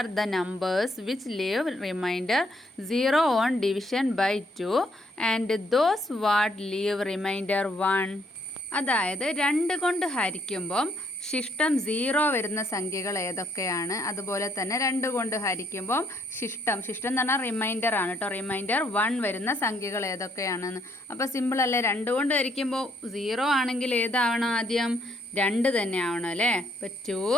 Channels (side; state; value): both; normal; correlation 0.70